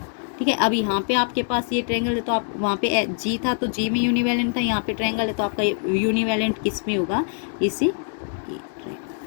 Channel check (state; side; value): silent; right; digital silence